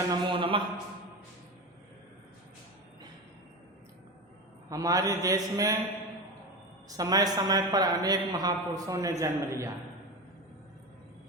नमो नमः। हमारे देश में समय समय पर अनेक महापुरुषों ने जन्म लिया।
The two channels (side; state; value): both; normal; correlation 0.22